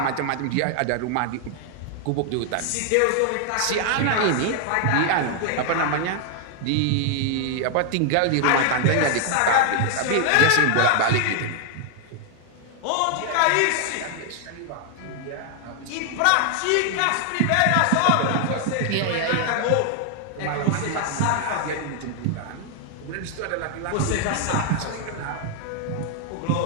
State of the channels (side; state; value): both; different; correlation 0.00